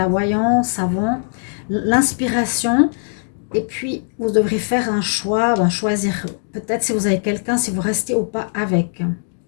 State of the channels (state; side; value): silent; right; digital silence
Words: voyance avant, l'inspiration, et puis vous devrez faire un choix, choisir peut-être si vous avez quelqu'un, si vous restez ou pas avec.